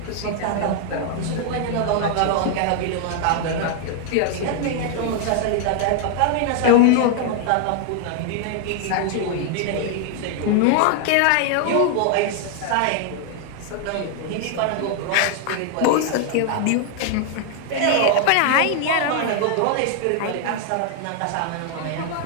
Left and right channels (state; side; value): different; both; correlation 0.00